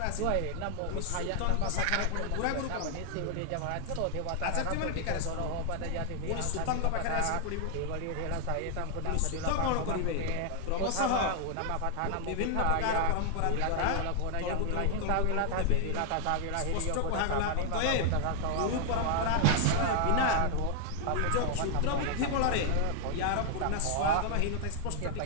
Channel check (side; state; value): both; different; correlation 0.00